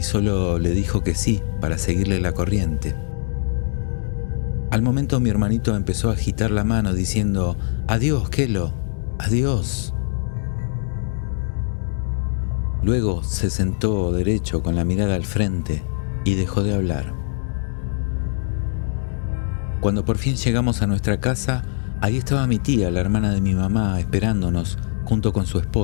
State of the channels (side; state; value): right; silent; digital silence